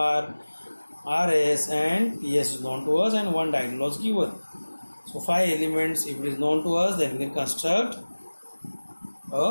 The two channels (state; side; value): inverted; both; correlation -1.00